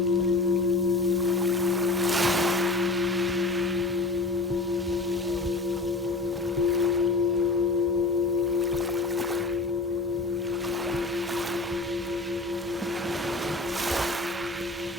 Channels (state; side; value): quieter; right; 3.2 dB